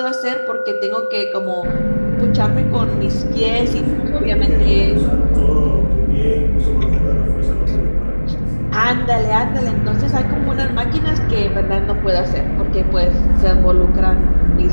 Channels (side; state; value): both; inverted; correlation -1.00